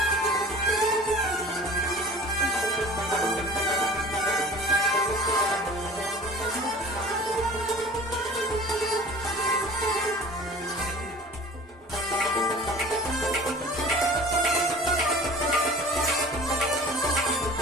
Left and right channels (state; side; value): normal; both; correlation 0.43